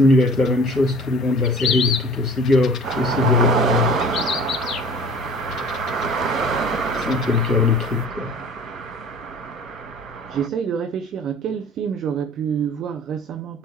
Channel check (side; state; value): both; normal; correlation 0.46